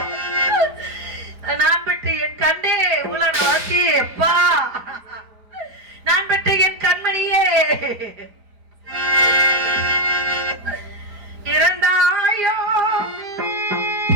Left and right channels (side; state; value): left; late; 4.4 ms